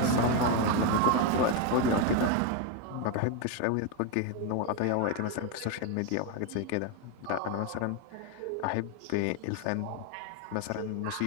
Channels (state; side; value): different; both; correlation 0.02